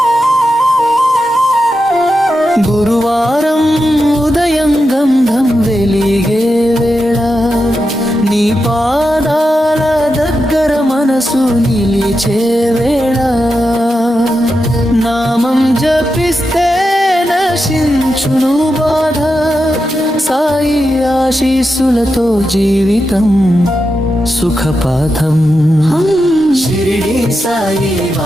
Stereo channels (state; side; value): normal; both; correlation 0.88